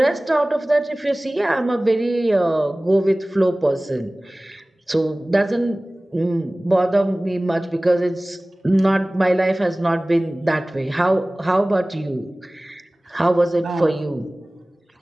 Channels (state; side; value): normal; both; correlation 0.98